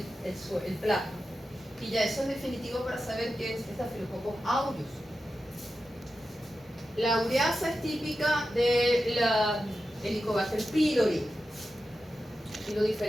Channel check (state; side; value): normal; both; correlation 0.91